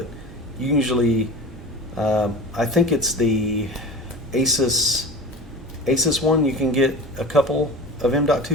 usually, I think it's the ASUS one, you can get a couple of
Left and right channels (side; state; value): both; normal; correlation 0.33